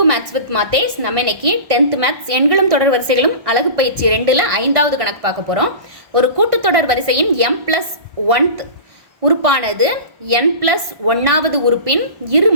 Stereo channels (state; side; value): late; left; 1.6 ms